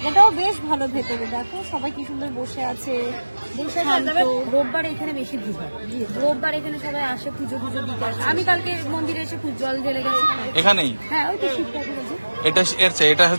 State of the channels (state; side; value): inverted; both; correlation -1.00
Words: বেশ ভালো, ভেতরে দেখো সবাই কি সুন্দর বসে আছে, শান্ত। রোববার এখানে বেশি ভিড় হয়, রোববার এখানে সবাই আসে পুজো পুজো দিতে আসে। আমি কালকে মন্দিরে এসে জল ঢেলে গেছি। এখানেই হ্যাঁ ওই তো শিব ঠাকুর আছে, এটা